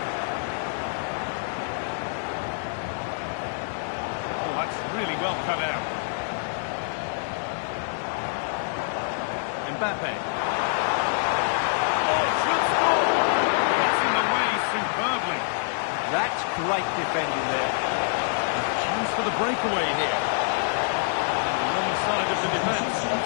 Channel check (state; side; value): silent; right; 61 dB below the other